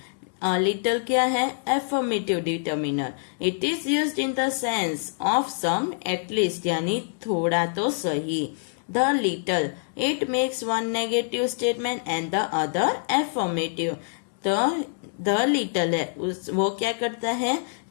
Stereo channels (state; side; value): silent; right; digital silence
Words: A little क्या है? Affirmative determiner. It is used in the sense of some, at least, यानी थोड़ा तो सही। The little, it makes one negative statement and the other affirmative. तो the little है वो क्या करता है?